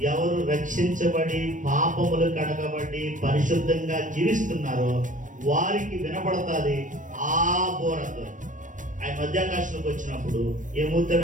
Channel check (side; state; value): left; late; 0.37 ms